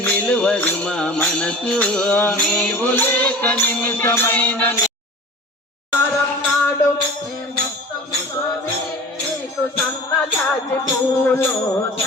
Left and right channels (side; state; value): both; normal; correlation 0.38